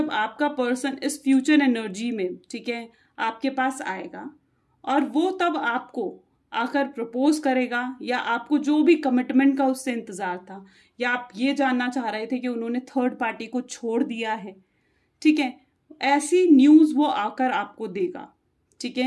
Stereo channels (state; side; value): identical; both; correlation 1.00